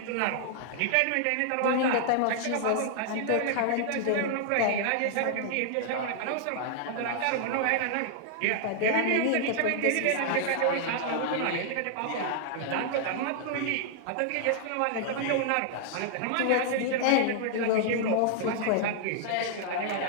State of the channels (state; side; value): different; both; correlation 0.00